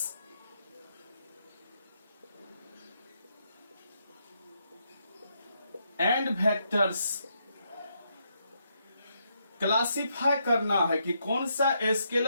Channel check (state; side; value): inverted; both; correlation -0.78